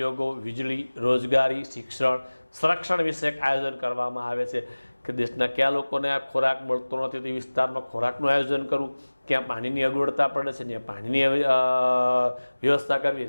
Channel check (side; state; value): both; inverted; correlation -1.00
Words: વીજળી, રોજગારી, શિક્ષણ, સંરક્ષણ વિષયક આયોજન કરવામાં આવે છે. કે દેશના કયા લોકોને આ ખોરાક મળતો નથી તે વિસ્તારમાં ખોરાકનું આયોજન કરવું, ક્યાં પાણીની અગવડતા પડે છે ત્યાં પાણીની વ્યવસ્થા કરવી,